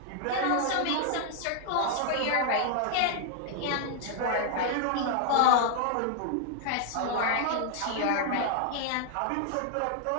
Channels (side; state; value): both; different; correlation 0.00